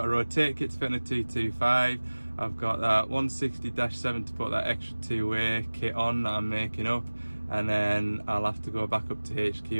a rotate kit to fit on a 225. I've got that 160-7 to put that extra two-way kit on that I'm making up, and then I'll have to go back up to HQ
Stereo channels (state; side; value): inverted; both; correlation -1.00